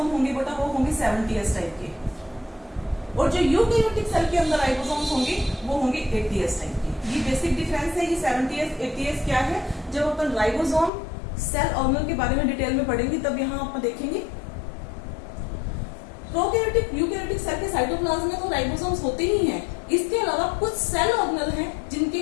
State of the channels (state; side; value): drops out; right; at 10.9 s